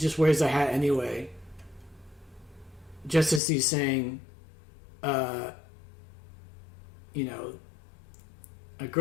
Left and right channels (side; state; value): right; drops out; at 3.4 s